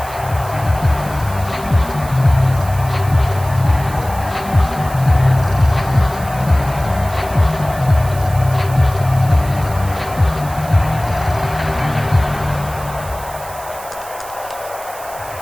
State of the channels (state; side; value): noise; right; hiss, 16 dB below the sound